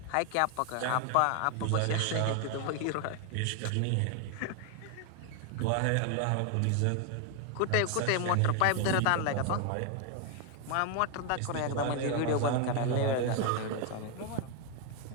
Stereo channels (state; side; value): different; both; correlation 0.01